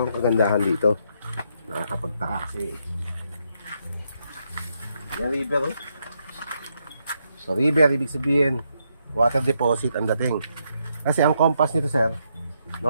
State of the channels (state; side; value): inverted; both; correlation -0.78